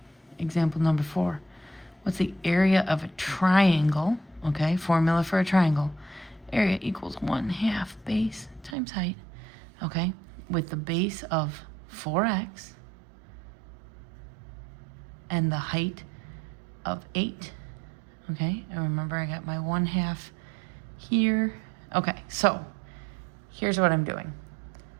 example number 4. What's the area of a triangle? Okay, formula for a triangle. Area equals 1/2 base times height. Okay, with the base of 4x and the height of 8. Okay, and remember I got my 1/2 here. Okay, so here's what I'm doing.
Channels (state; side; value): drops out; left; at 8.8 s